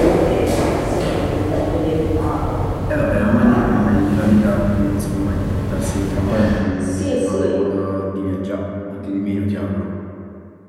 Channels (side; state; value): both; identical; correlation 1.00